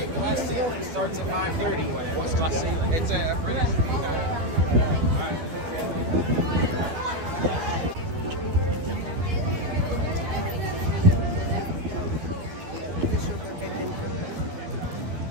Starts at 5:30. It's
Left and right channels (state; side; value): late; left; 12 ms